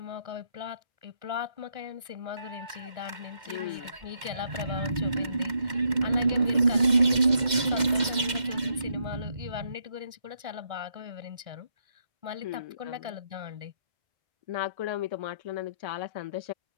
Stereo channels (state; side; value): late; left; 2.1 ms